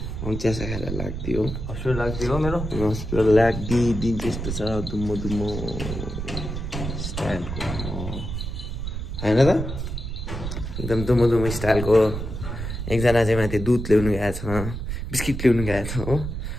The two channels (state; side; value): noise; right; rumble, 5 dB below the sound